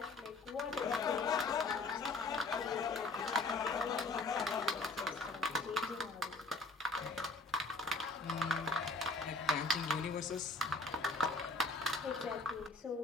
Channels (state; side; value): quieter; right; 3.6 dB